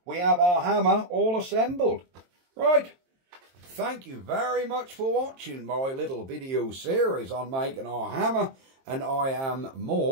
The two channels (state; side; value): late; left; 23 ms